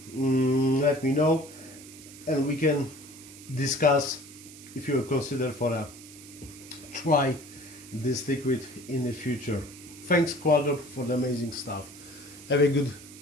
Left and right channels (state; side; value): noise; right; hiss, 18 dB below the sound